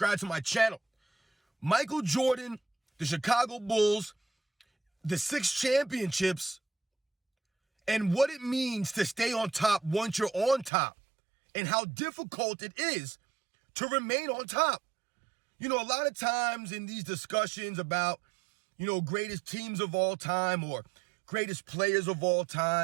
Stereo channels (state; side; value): drops out; left; at 10.7 s